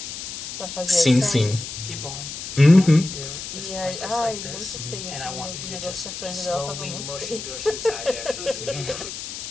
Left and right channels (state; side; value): noise; left; hiss, 8 dB below the sound